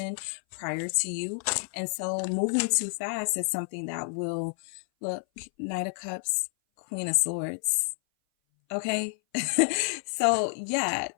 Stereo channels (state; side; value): silent; right; 57 dB below the other